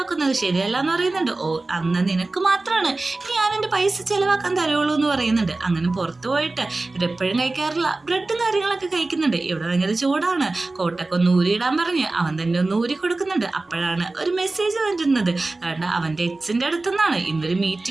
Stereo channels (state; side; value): quieter; left; 3.2 dB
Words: ശരിയല്ല എന്ന് പറയുന്നുണ്ട്. ഓ അന്ന് നിനക്ക് മാത്രമാണ് ഞാൻ എൻ്റെ പൈസ ചിലവാക്കാൻ തരുള്ളൂ എന്ന് പറയുന്നുണ്ട്. അങ്ങനെ പുറത്തു പോയിട്ട് ഇവരെപ്പോഴും കഴിക്കാറില്ല ബ്രെഡും കാര്യങ്ങളൊക്കെ കഴിക്കുന്നുണ്ട്. ഇവിടെ ഭയങ്കര ചൂടാണ്, കോട്ടൊക്കെ ഒന്ന് ഊരിയിടാൻ പറഞ്ഞ് അവൻ തന്നെ ഒന്ന് ഊരി കൊടുക്കുന്നുണ്ട്. അപ്പോഴാണ് ഒരു മെസ്സേജ് വരുന്നത്, കാരണം അവൻ്റെ എച്ചിൻ്റെ അടുത്തുനിന്നാണ്, ഇന്നൊരു